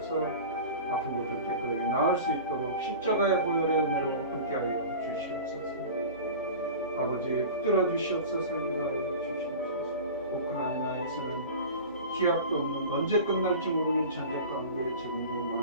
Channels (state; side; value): inverted; both; correlation -0.35